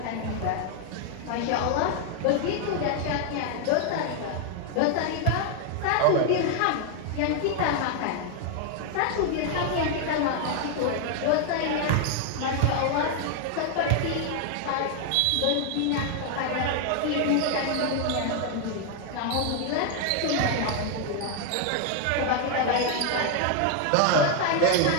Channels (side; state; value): both; different; correlation 0.00